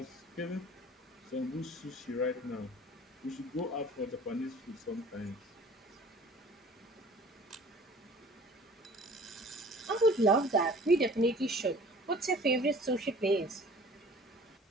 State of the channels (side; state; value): both; normal; correlation 0.47